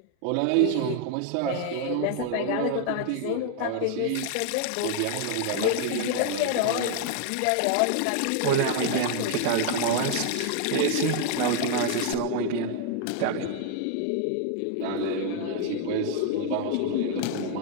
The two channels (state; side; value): different; both; correlation 0.00